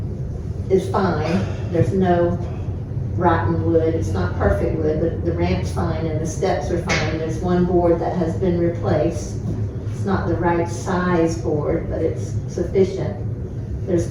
is fine, there's no rotten wood, it's not perfect wood, but the ramp's fine and the steps are fine. There's one board that has been replaced. It's not the right size board, but it's sufficient.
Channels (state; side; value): identical; both; correlation 1.00